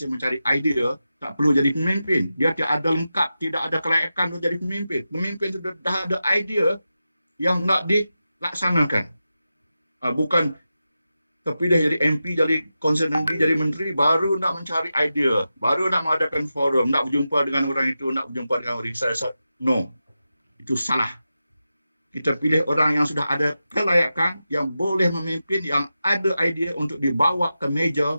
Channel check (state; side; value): inverted; both; correlation -0.91